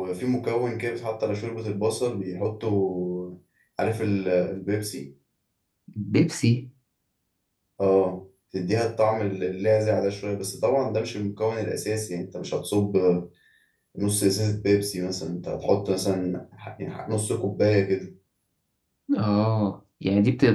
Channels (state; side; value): identical; both; correlation 1.00